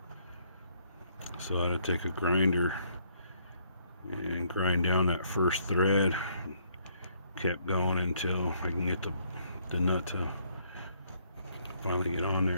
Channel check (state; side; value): inverted; both; correlation -0.69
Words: so I had to take a grinder and grind down that first thread. Kept going until I can get the nut to finally get on